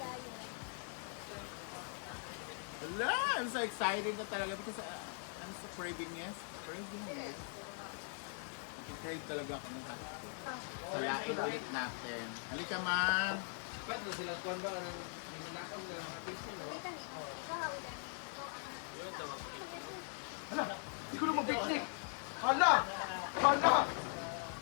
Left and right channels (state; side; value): silent; right; 50 dB below the other